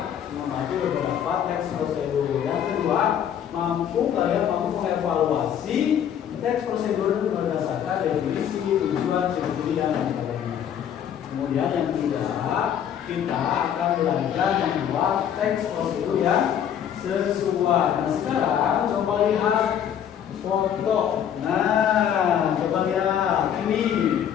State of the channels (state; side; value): quieter; right; 9.3 dB